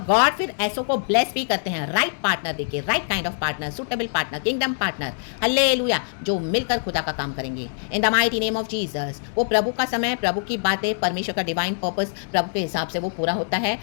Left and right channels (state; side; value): silent; right; digital silence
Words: गॉड फिर ऐसों को ब्लेस भी करते हैं, राइट पार्टनर देके, right kind of partner, suitable partner, kingdom partner, hallelujah, जो मिलकर खुदा का काम करेंगे इन the mighty name of Jesus. वो प्रभु का समय, प्रभु की बातें, परमेश्वर का डिवाइन पर्पस प्रभु के हिसाब से वो पूरा होता है,